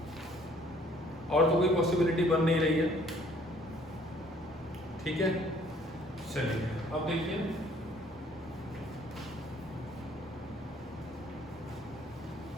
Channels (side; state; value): both; normal; correlation 0.59